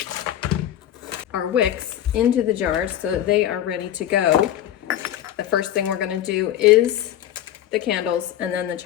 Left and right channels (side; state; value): right; quieter; 11.7 dB